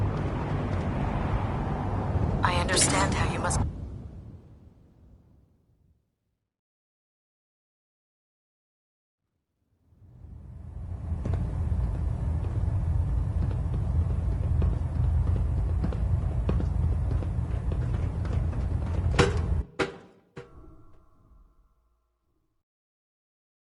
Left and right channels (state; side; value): identical; both; correlation 1.00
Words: I understand how you must...